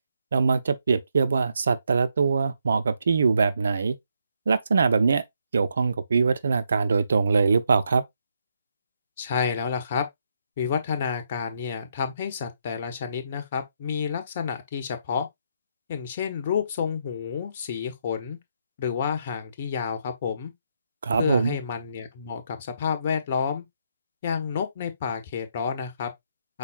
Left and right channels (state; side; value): inverted; both; correlation -0.77